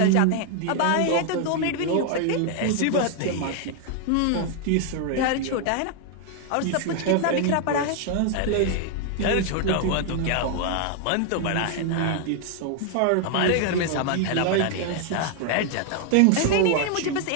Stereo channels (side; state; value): both; different; correlation 0.00